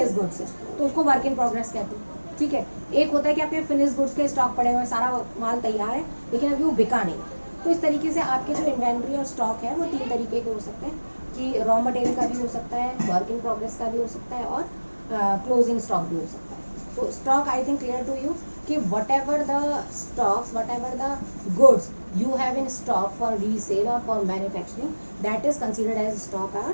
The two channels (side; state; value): both; inverted; correlation -1.00